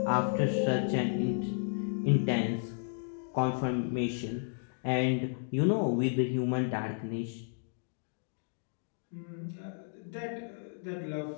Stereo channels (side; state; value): right; silent; digital silence